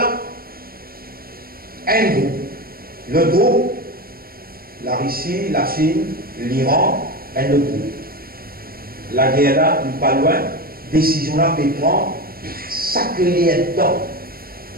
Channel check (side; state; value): left; late; 0.43 ms